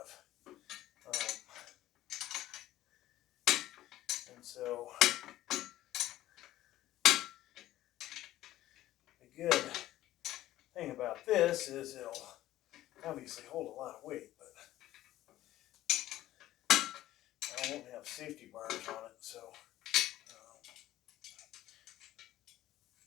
And so, the good thing about this is it'll obviously hold a lot of weight, but I won't have safety bars on it, so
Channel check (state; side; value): quieter; right; 14.6 dB